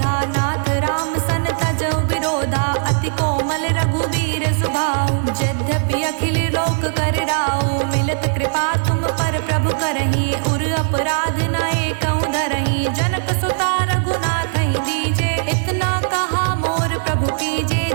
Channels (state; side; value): silent; left; digital silence